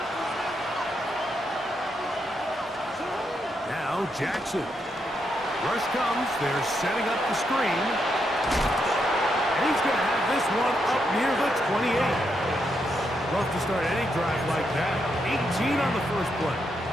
Now Jackson. Rush comes, they're setting up the screen. And he's going to have this one up near the 28. Rough to start any drive like that. 18 on the first play.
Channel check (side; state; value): both; normal; correlation 0.80